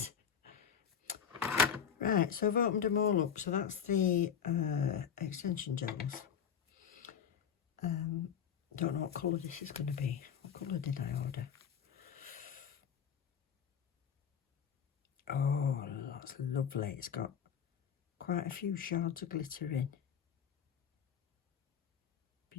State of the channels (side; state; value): right; quieter; 7.9 dB